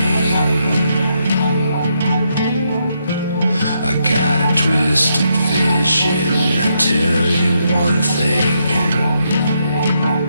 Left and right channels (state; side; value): inverted; both; correlation -0.79